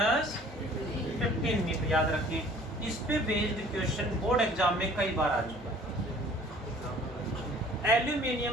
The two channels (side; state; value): both; normal; correlation 0.52